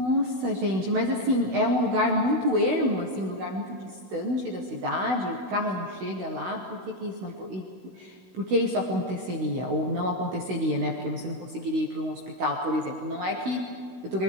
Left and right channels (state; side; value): late; left; 16 ms